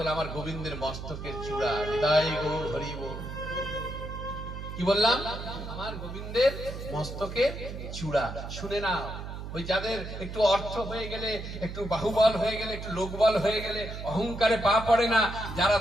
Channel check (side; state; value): right; noise; hum, 8 dB below the sound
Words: আমার গোবিন্দের মস্তকের চূড়া। হৃদয় গৌর হরি বল। কি বললাম? আমার গোবিন্দের মস্তকের চূড়া। শুনে না, ওই যাদের একটু অর্থ হয়ে গেলে, একটু বাহুবল হয়ে গেলে, একটু লোকবল হয়ে গেলে অহংকারে পা পড়ে না, যারা